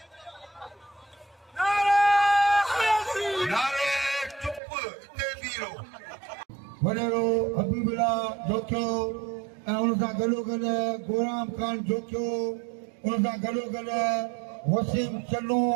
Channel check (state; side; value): drops out; left; at 4.6 s